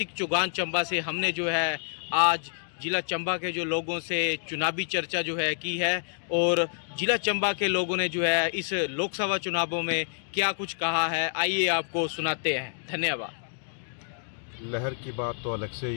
चौगान चंबा से हमने जो है आज जिला चंबा के जो लोगों से चुनावी चर्चा जो है की है और जिला चंबा के लोगों ने जो है इस लोकसभा चुनावों में क्या कुछ कहा है, आइए आपको सुनाते हैं। धन्यवाद। लहर की बात तो अलग से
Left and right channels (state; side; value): silent; right; digital silence